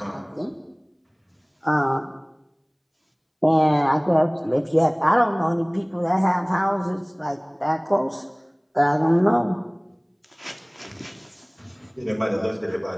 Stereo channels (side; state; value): both; identical; correlation 1.00